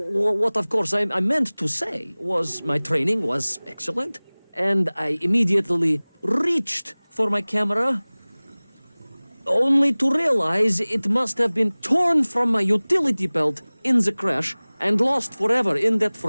of course, I meant to say was my training was excellent, and I immediately reached for my camera. only to realize it must have been torn from my utility belt in the crash and lost forever in that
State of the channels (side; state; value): both; inverted; correlation -1.00